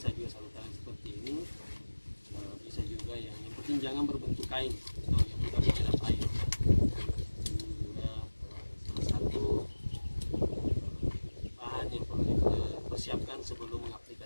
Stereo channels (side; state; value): both; inverted; correlation -1.00